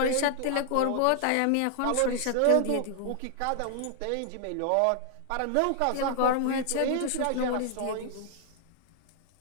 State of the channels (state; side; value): different; both; correlation 0.00